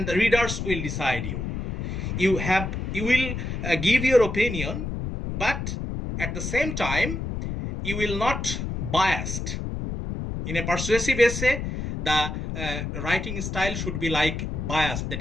the readers will decide you. You will give your opinion, but at the same time you will not biased. In a persuasive essay, the writing style should be like bias. That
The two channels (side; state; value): left; noise; rumble, 4 dB below the sound